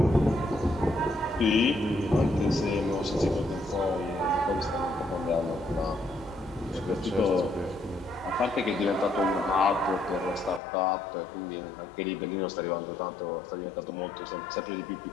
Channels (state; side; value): drops out; right; at 10.6 s